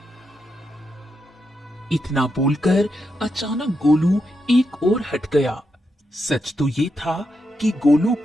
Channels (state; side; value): normal; both; correlation 0.84